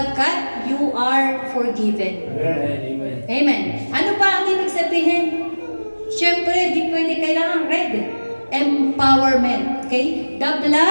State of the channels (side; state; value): both; inverted; correlation -1.00